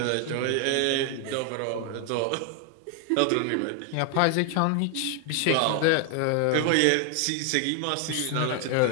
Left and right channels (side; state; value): both; different; correlation 0.00